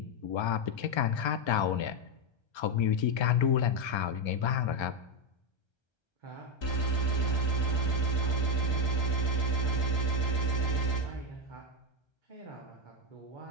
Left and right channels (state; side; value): late; right; 1.3 ms